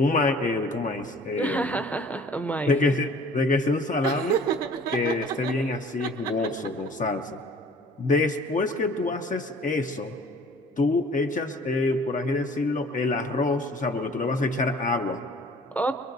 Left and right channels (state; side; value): normal; both; correlation 0.50